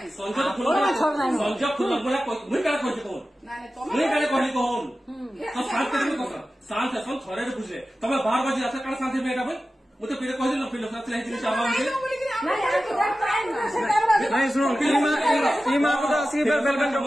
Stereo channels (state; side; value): normal; both; correlation 0.94